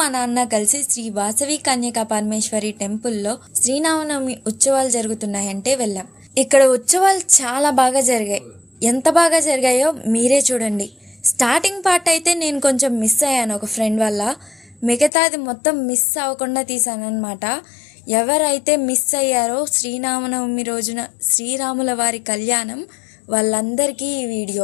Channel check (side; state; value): right; drops out; at 15.1 s